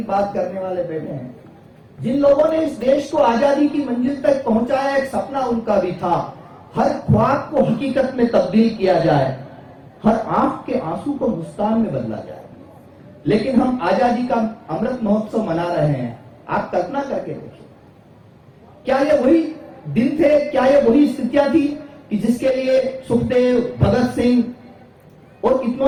बात करने वाले बैठे हैं, जिन लोगों ने इस देश को आजादी की मंजिल तक पहुंचाया, एक सपना उनका भी था हर ख्वाब को हकीकत में तब्दील किया जाए, हर आंख के आंसू को मुस्कान में बदला जाए। लेकिन हम आजादी का अमृत महोत्सव मना रहे हैं। आप कल्पना करके देखिए, क्या ये वही दिन थे, क्या ये वही स्थितियां थी कि जिसके लिए सुखदेव, भगत सिंह और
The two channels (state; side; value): identical; both; correlation 1.00